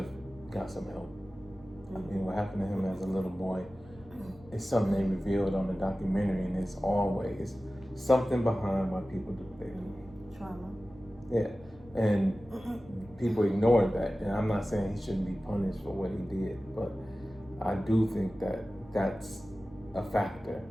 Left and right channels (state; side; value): normal; both; correlation 0.96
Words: got some help. I mean, what happened to him as a little boy is something they revealed on the documentary, and it's always something behind why people do what they do. Trauma. Yeah, and people ignore that. And I'm not saying he shouldn't be punished for what he did, but I do think that that's a factor,